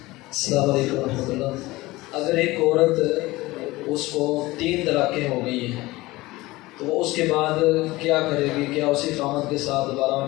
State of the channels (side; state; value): right; quieter; 19.8 dB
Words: السلام علیکم ورحمۃ اللہ۔ اگر ایک عورت اس کو 3 طلاقیں ہو گئی ہیں تو وہ اس کے بعد کیا کرے گی؟ کیا اسی خامد کے ساتھ دوبارہ